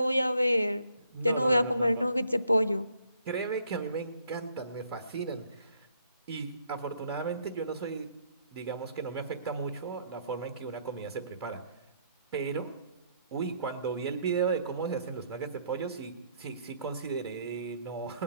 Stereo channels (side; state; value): both; inverted; correlation -0.68